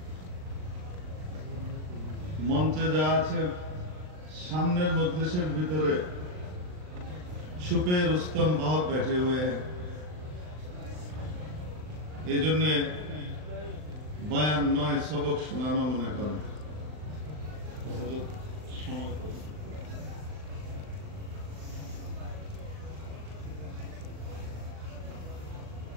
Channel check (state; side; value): late; left; 39 ms